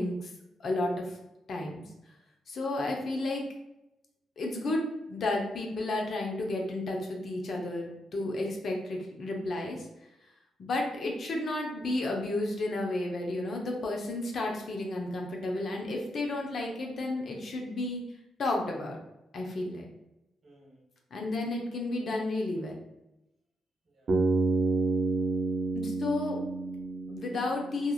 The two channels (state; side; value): normal; both; correlation 0.79